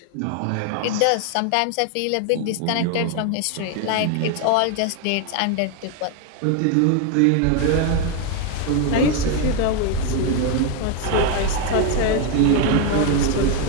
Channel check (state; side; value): different; both; correlation 0.01